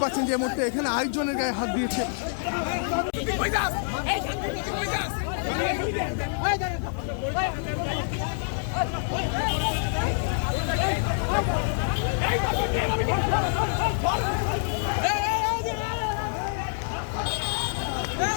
পাচ্ছেন যে এই মুহূর্তে এখানে আরেকজনের গায়ে হাত দিয়েছে।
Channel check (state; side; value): silent; right; digital silence